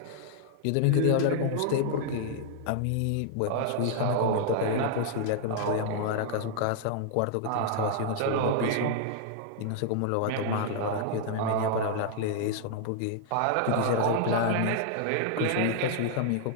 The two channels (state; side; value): different; both; correlation -0.01